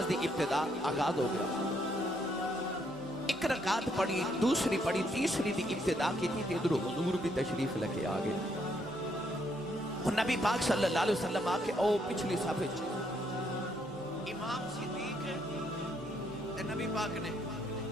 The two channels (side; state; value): both; normal; correlation 0.72